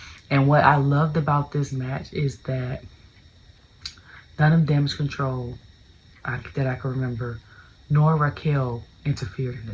And what I loved about this match is that none of Damage Control that I can remember, nor Raquel interfered in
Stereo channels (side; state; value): both; identical; correlation 1.00